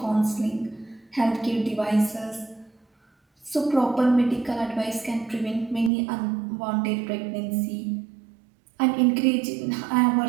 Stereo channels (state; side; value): drops out; left; at 5.9 s